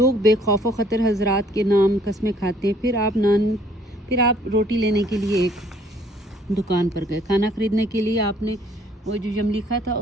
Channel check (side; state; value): both; normal; correlation 0.60